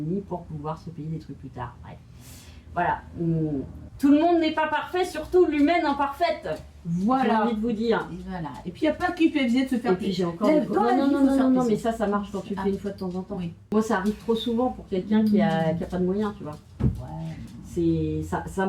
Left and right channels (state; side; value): identical; both; correlation 1.00